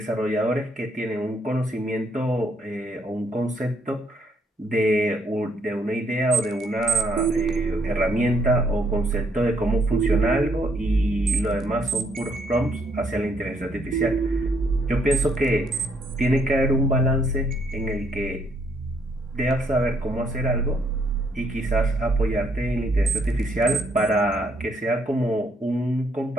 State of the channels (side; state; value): both; normal; correlation 0.70